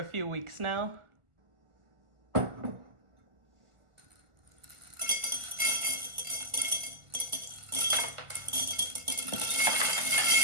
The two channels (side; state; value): left; late; 1.4 ms